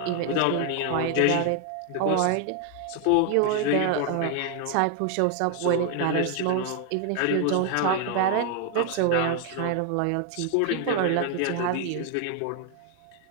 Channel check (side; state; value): both; different; correlation 0.00